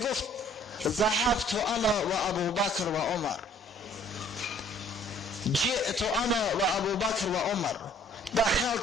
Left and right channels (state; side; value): normal; both; correlation 0.57